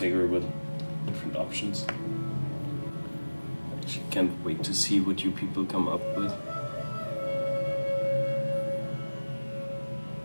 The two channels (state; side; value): inverted; both; correlation -1.00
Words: with different options. I actually can't wait to see what you people come up with.